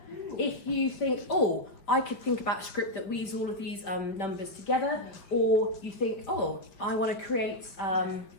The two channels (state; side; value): late; right; 5.1 ms